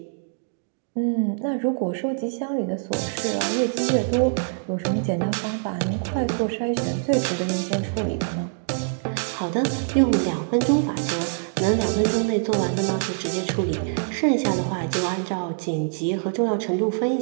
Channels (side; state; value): left; silent; digital silence